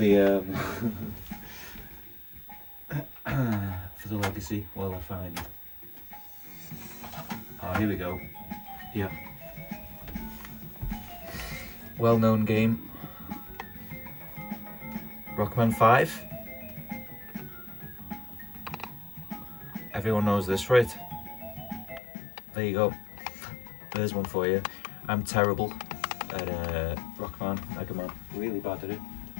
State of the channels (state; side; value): drops out; right; at 22.0 s